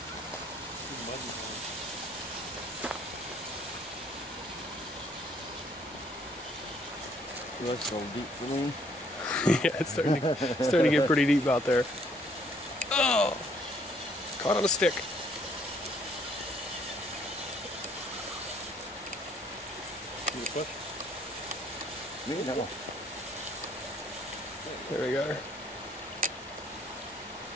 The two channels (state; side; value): normal; both; correlation 0.64